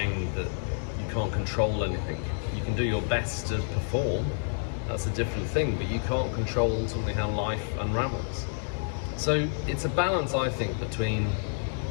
that you can't control anything. You can do your best to perform, that's a different thing, but you can't control ultimately how life unravels. So it's a balance, I think, between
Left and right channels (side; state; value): right; silent; digital silence